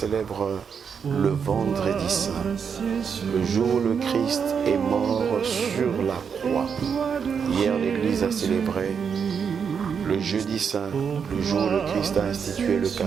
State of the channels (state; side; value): quieter; left; 6.7 dB